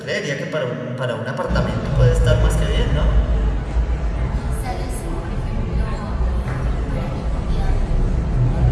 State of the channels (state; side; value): identical; both; correlation 1.00